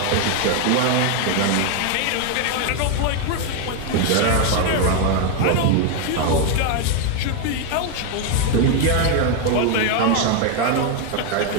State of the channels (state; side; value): different; both; correlation 0.01